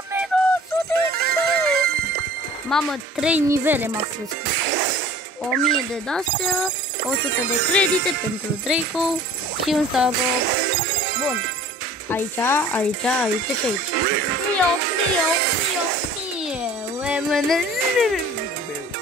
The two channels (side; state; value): both; normal; correlation 0.47